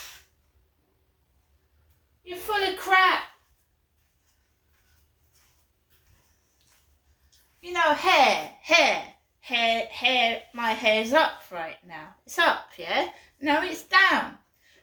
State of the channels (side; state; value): both; identical; correlation 1.00